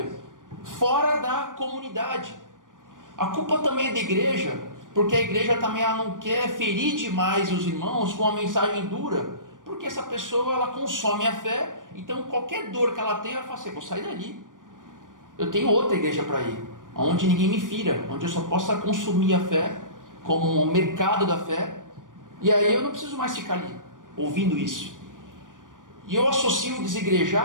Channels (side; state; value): left; late; 0.88 ms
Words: fora da comunidade. A culpa também é da igreja, porque a igreja também ela não quer ferir demais os irmãos com uma mensagem dura, porque essa pessoa ela consome a fé, então qualquer dor que ela tem, ela fala assim, vou sair dali, eu tenho outra igreja para ir, onde ninguém me fira, onde eu só possa consumir a fé, como um mercado da fé, e aí eu não preciso mais ficar ali, ouvindo isso. E eu associo o